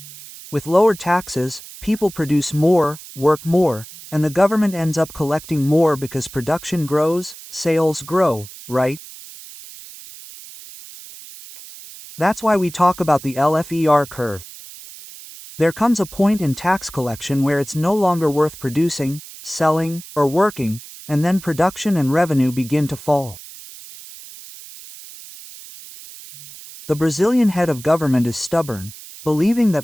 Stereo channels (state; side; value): noise; right; hiss, 16 dB below the sound